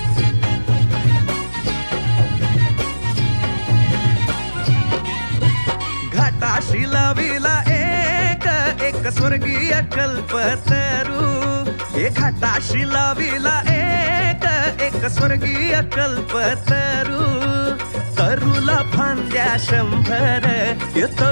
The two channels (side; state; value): both; inverted; correlation -1.00